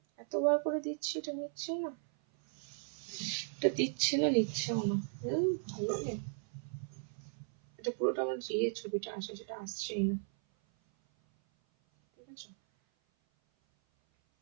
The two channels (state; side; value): silent; left; 54 dB below the other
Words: এতবার করে দিচ্ছি, এটা নিচ্ছি না, এটা দিচ্ছে না, নিচ্ছেও না। ভালো লাগে, এটা পুরোটা আমার যে ছবিটা আসে সেটা আসছেই না। ঠিক আছে,